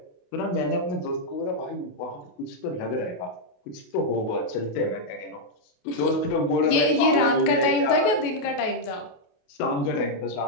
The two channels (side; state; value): right; late; 28 ms